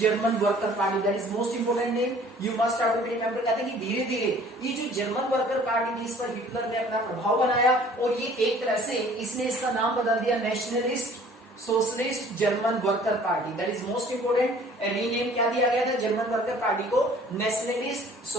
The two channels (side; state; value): both; normal; correlation 0.52